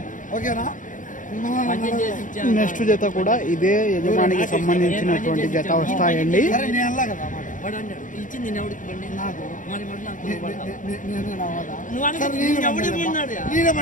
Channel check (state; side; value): late; right; 0.38 ms